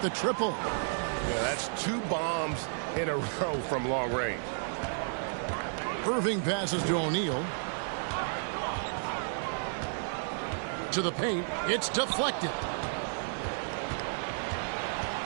triple. Yeah, that's 2 bombs in a row from long range. Irving passes to O'Neal. To the paint. It's deflected.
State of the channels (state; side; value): silent; left; digital silence